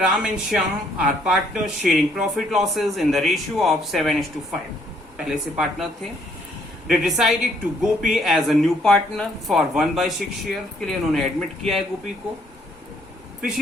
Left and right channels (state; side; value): normal; both; correlation 0.67